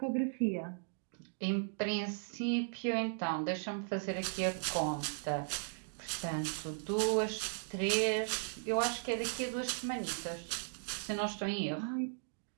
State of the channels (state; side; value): silent; left; digital silence